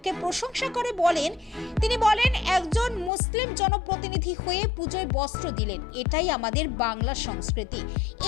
প্রশংসা করে তিনি বলেন একজন মুসলিম জনপ্রতিনিধি হয়ে পুজোয় বস্ত্র দিলেন, এটাই আমাদের বাংলা সংস্কৃতি,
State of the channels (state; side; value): drops out; right; at 3.1 s